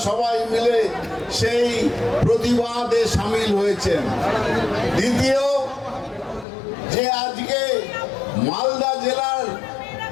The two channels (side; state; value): right; drops out; at 6.5 s